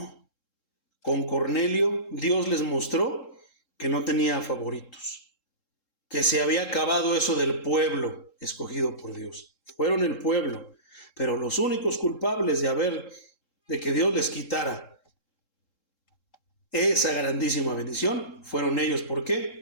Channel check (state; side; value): late; right; 3.7 ms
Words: Con Cornelio, Dios les mostró que no tenía favoritos. que se había acabado eso del pueblo escogido por Dios. Fueron el pueblo, pero los únicos culpables de que Dios les quitara esa grandísima bendición fueron ellos. ¿Por